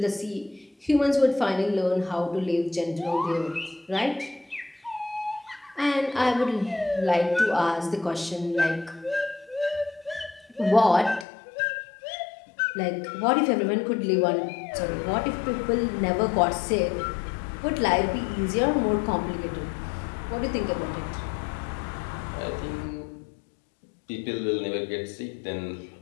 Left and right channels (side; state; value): right; drops out; at 11.2 s